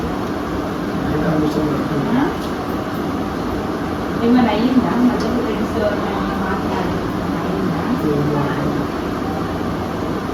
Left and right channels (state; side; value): identical; both; correlation 1.00